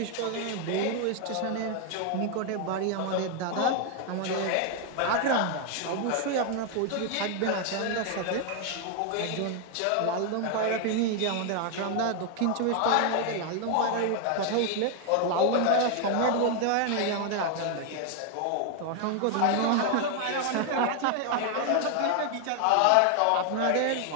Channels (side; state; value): both; different; correlation 0.00